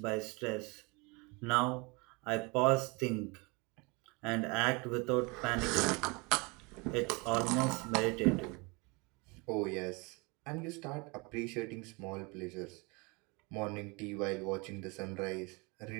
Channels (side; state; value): left; quieter; 28.3 dB